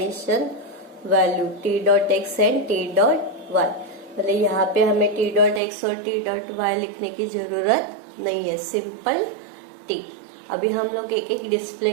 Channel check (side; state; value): left; drops out; at 5.6 s